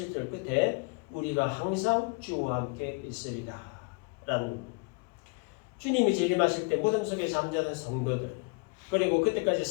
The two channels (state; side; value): quieter; right; 31.2 dB